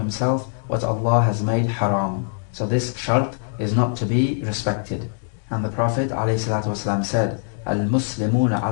what Allah has made haram. So this shart is not to be respected. And the Prophet ﷺ said, الْمُسْلِمُونَ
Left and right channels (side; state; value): right; silent; digital silence